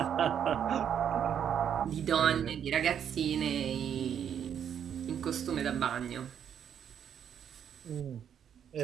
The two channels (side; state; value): left; quieter; 8.7 dB